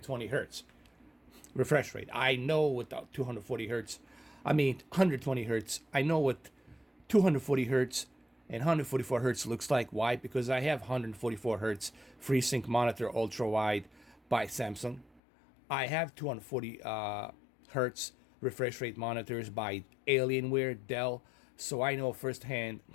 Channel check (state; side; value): drops out; right; at 15.2 s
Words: hertz refresh rate. I know what the 240 hertz, 120 hertz. I know what 240 hertz and 144 hertz looks like. Why? Because I have 144 hertz FreeSync monitor ultra wide by Samsung. I have 240 hertz refresh rate monitors by Alienware, Dell. So I know firsthand